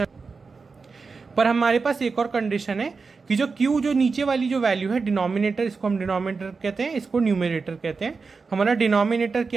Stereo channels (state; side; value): quieter; left; 4.6 dB